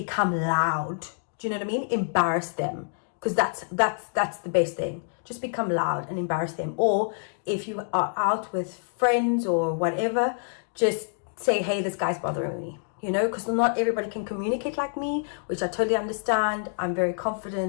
loud. Do you know what I mean? Embarrass them. because that's the best thing. Just become loud and embarrass them. Or if you are out with friends or whatever, just say, hey, this guy's bothering me, you know, because not everybody can communicate like me, which I totally understand. I'm very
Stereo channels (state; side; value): silent; right; digital silence